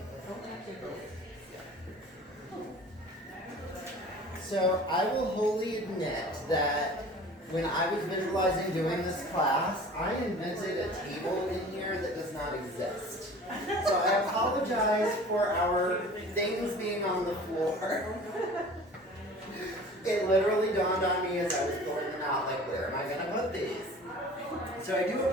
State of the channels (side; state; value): both; normal; correlation 0.43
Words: So I will wholly admit that when I was visualizing doing this class, I invented a table in here that does not exist. So I apologize for our things being on the floor. It literally dawned on me as I was pulling them out, like, where am I gonna put these? So I do